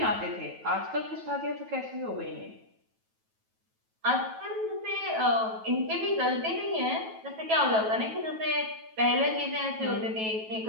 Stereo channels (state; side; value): late; left; 9.2 ms